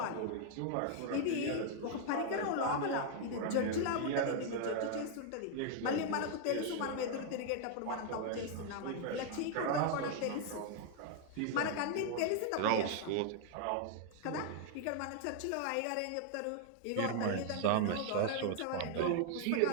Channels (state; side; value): different; both; correlation 0.00